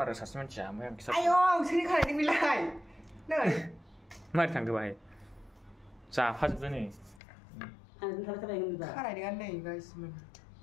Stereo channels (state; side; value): drops out; right; at 7.2 s